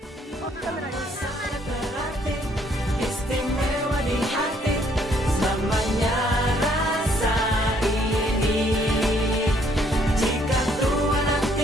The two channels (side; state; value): both; normal; correlation 0.66